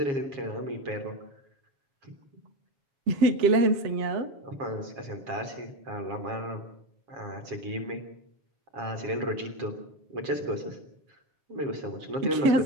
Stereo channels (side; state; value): left; late; 7.3 ms